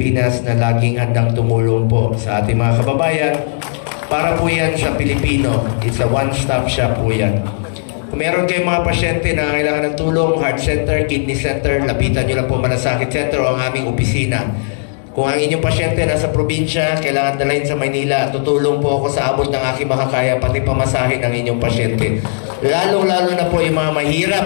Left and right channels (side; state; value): right; silent; 69 dB below the other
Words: na laging handang tumulong po sa ating mga kababayan. Para po yan sa Pilipino. It's a one-stop shop po yan. Kung meron kayong mga pasyente na kailangan ng tulong, heart center, kidney center, lapitan nyo lang po Malasakit Center o ang aming opisina. Kung ang inyong pasyente nasa probinsya, kailangan dalhin sa Maynila, tutulong po ako sa abot ng aking makakaya, pati pamasahin ng inyong pasyente. Lalong-lalo na po yung mga mahirap